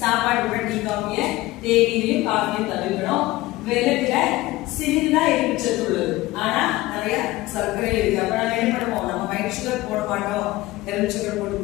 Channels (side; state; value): right; quieter; 18.6 dB